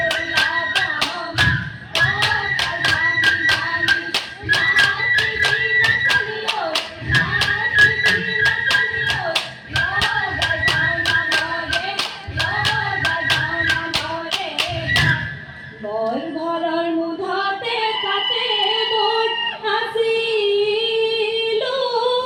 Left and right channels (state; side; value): identical; both; correlation 1.00